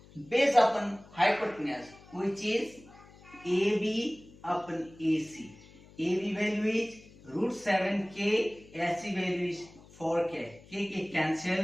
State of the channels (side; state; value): left; noise; hum, 23 dB below the sound